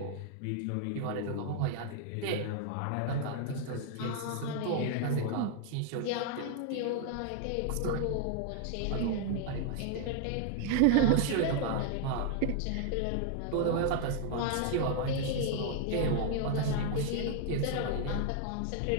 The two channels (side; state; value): both; different; correlation 0.00